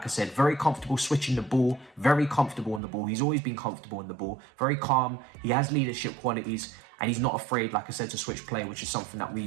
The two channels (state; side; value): drops out; left; at 2.8 s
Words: I said, very comfortable switching the ball, very comfortable on the ball. He's always been comfortable in the ball, very calm. He has leadership qualities, and he's not afraid, like I said, to switch play, which is something that